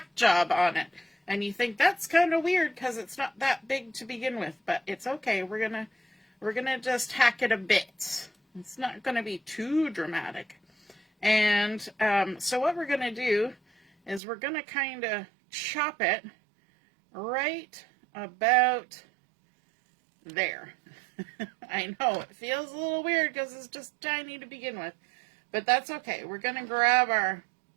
job on it. And you think that's kind of weird because it's not that big to begin with, but it's okay. We're gonna just hack it a bit. It's not gonna be too dramatic. And so what we're gonna do is we're gonna kind of chop it right about there. I know it feels a little weird because it's just tiny to begin with, but that's okay. We're gonna grab our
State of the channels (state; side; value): drops out; left; at 14.2 s